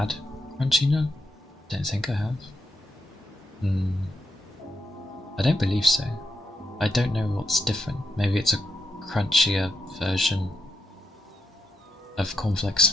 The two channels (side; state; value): both; normal; correlation 0.83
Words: Crunchy Nut. Don't think I have. I don't believe so. I don't know what's different. Maybe it's a crunchier version of cornflakes.